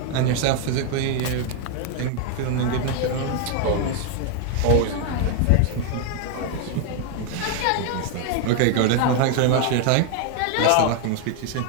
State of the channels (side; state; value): both; different; correlation 0.00